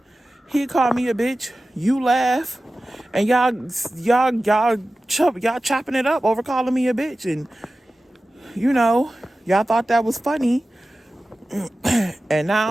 He called me a bitch. You laugh. And y'all chopping it up over calling me a bitch. And, y'all thought that was funny. And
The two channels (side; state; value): both; normal; correlation 0.95